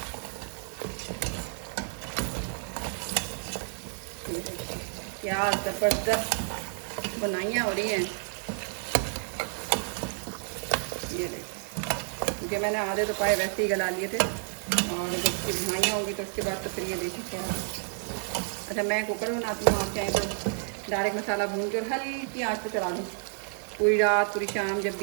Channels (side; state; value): left; silent; 58 dB below the other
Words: क्या ज़बरदस्त बुनाइयाँ हो रही हैं। ये देखिए क्योंकि मैंने आधे तो पाए वैसे ही गला लिए थे और जब इसकी बुनाइयाँ होंगी तो उसके बाद तो फिर ये देखिए क्या। अच्छा मैं कुकर में बनाती हूँ, आप चाहें तो डायरेक्ट मसाला भून के और हल्की आँच पे चला दूँ पूरी रात पूरी शाम जब